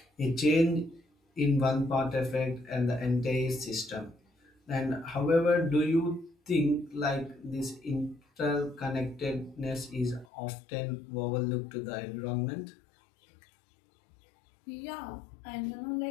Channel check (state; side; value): drops out; right; at 10.2 s